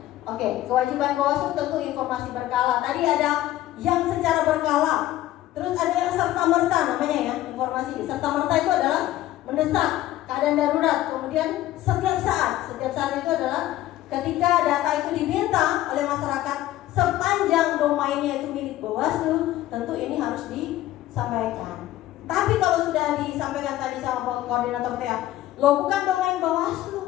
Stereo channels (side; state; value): right; quieter; 14.6 dB